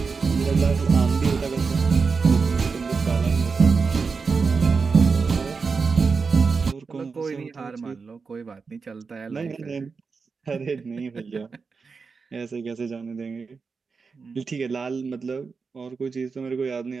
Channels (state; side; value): quieter; left; 4.9 dB